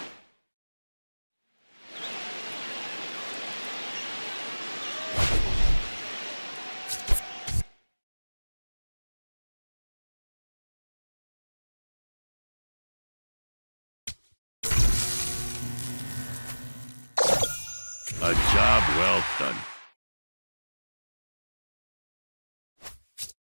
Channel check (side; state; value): both; inverted; correlation -1.00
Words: A job well done.